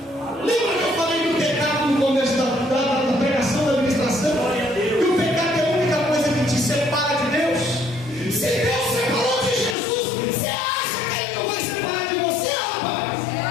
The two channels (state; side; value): drops out; right; at 9.8 s